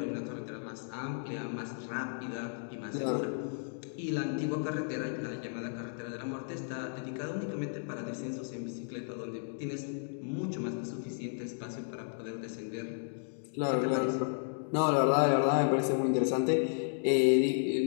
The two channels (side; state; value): right; silent; digital silence